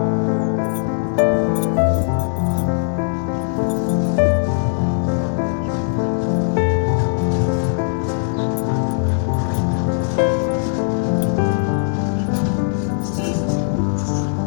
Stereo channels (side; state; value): right; silent; digital silence